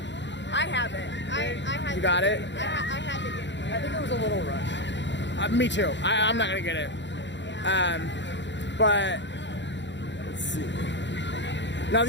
I have it. I had. You got it? I had to get it. I think it was a little rushed. Me too. I'm not gonna get it. But let's see. Now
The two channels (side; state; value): right; late; 0.52 ms